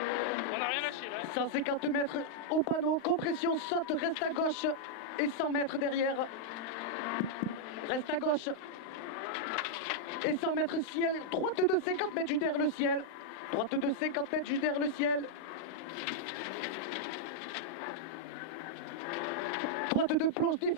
On n'a rien lâché là. 150 mètres au panneau, compression, saute, reste à gauche et 100 mètres derrière. Reste à gauche et 100 mètres ciel, droite de 50 mètres juste derrière le ciel. Droite de 50 mètres juste derrière le ciel. Droite de plonge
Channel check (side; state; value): right; late; 35 ms